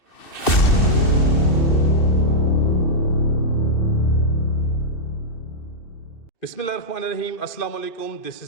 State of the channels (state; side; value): late; right; 2.6 ms